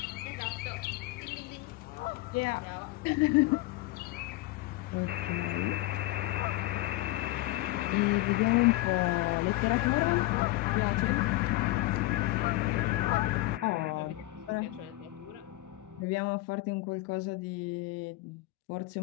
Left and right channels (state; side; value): quieter; right; 18.3 dB